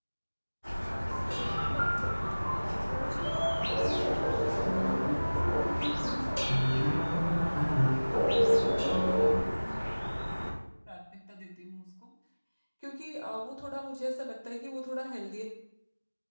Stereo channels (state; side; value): inverted; both; correlation -1.00